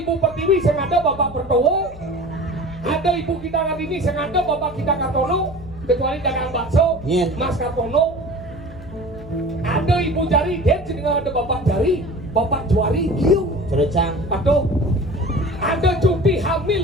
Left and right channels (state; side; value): noise; left; hum, 17 dB below the sound